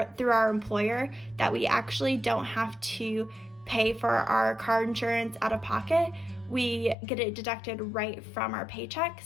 through our employer that we actually don't have to pay for our car insurance out of pocket. We get it deducted right from our paycheck.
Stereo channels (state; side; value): drops out; right; at 7.0 s